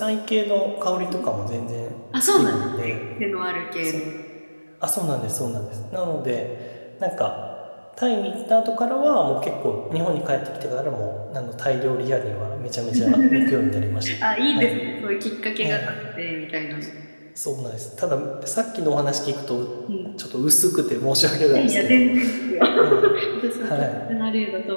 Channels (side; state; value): both; inverted; correlation -1.00